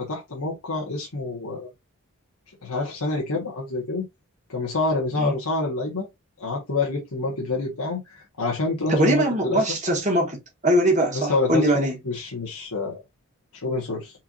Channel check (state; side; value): normal; both; correlation 0.26